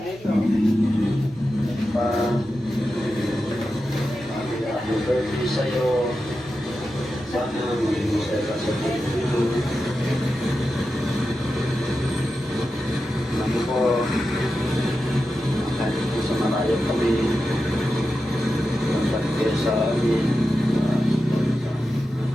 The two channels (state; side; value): normal; both; correlation 0.91